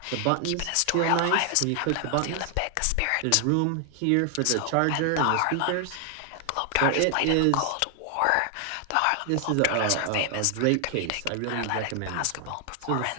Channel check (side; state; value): both; different; correlation 0.00